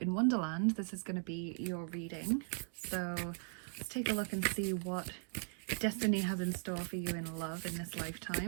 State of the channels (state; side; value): silent; left; 52 dB below the other